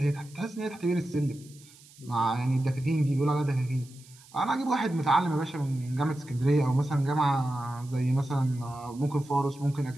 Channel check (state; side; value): noise; right; hiss, 24 dB below the sound